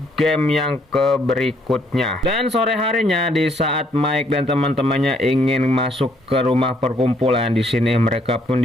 game yang berikutnya. Dan sore harinya di saat Mike dan teman-temannya ingin masuk ke rumah perkumpulan, di sini mereka pun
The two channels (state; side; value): normal; both; correlation 0.68